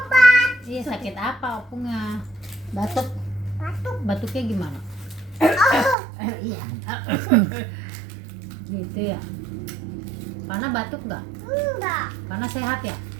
Iya, sakit apa opungnya? Batuk. Batuk. Batuknya gimana? Iya. Gitu ya. Pana batuk nggak? Enggak. Pana sehat ya?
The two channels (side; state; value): left; drops out; at 6.0 s